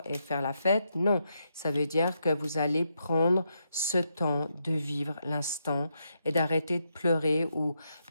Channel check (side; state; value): both; inverted; correlation -0.81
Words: et faire la fête. Non, ça veut dire que vous allez prendre ce temps de vivre l'instant et d'arrêter de pleurer ou